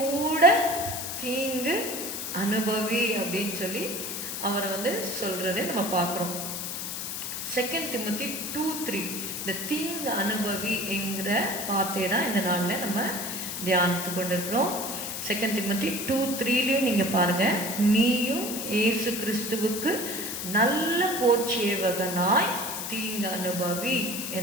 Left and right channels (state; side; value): noise; left; hiss, 5 dB below the sound